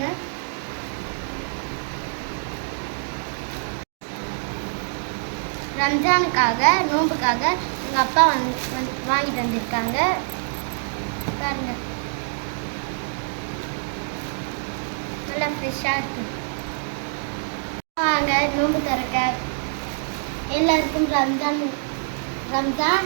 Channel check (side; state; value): left; silent; digital silence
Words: ரம்ஜானுக்காக நோம்புக்காக எங்கள் அப்பா வாங்கிட்டு வந்திருக்காங்க பாருங்க. நல்லா ஃப்ரெஷ்ஷாக இருக்கு. வாங்க நோம்பு திறக்க. எல்லாருக்கும் ரம்ஜான்